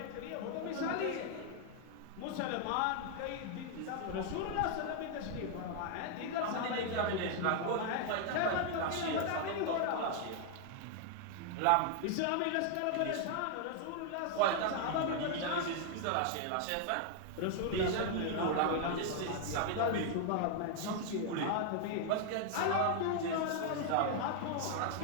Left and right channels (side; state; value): both; different; correlation 0.00